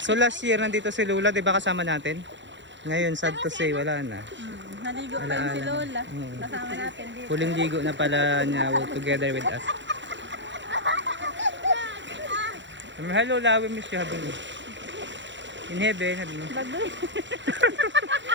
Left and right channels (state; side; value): late; left; 0.53 ms